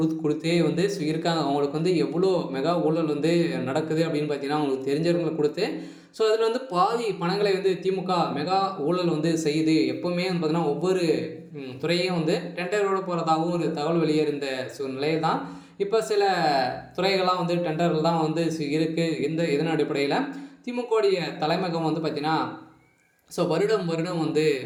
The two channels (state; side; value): identical; both; correlation 1.00